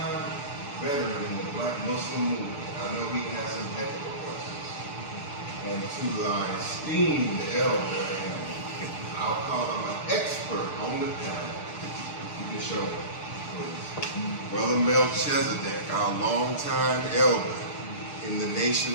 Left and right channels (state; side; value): late; right; 6.8 ms